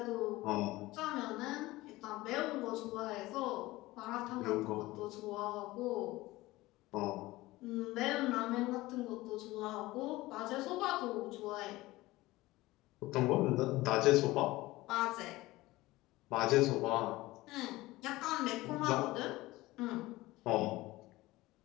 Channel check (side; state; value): right; quieter; 18.9 dB